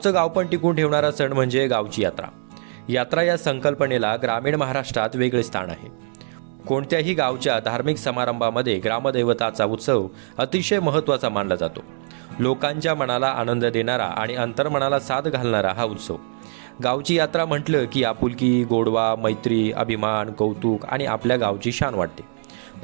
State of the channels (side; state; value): left; silent; digital silence